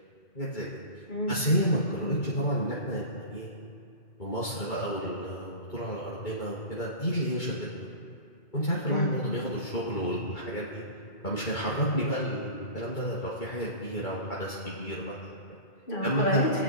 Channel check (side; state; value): right; late; 2.2 ms